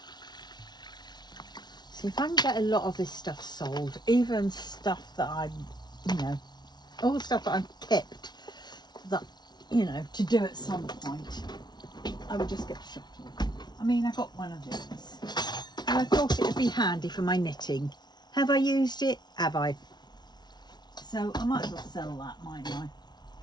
see if I can get a lot of this stuff sold, even stuff that I'm, you know, all the stuff that I've kept that, you know, to do at some point, I would just get shot of. I mean, I got one of these and I thought it would be handy for my knitting. Have I used it? Have I? So I might as well sell that, mightn't I?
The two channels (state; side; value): late; right; 0.20 ms